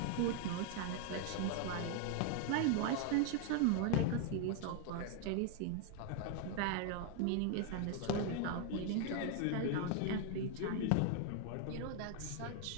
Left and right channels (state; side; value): different; both; correlation 0.00